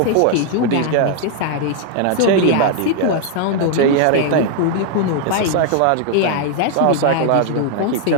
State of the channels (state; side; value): different; both; correlation 0.00